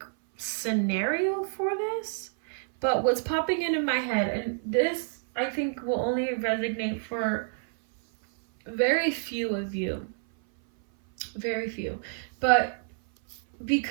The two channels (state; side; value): silent; left; 57 dB below the other